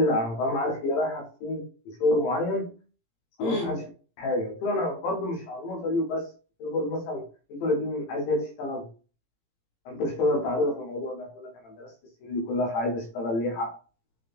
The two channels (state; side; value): late; right; 18 ms